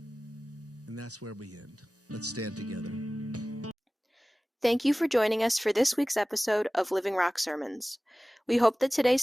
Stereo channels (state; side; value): normal; both; correlation 0.97